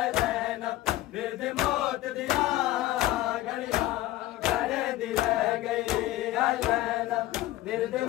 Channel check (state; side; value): quieter; right; 16.1 dB